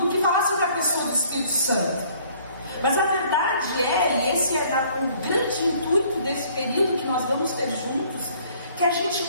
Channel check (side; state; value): both; inverted; correlation -0.59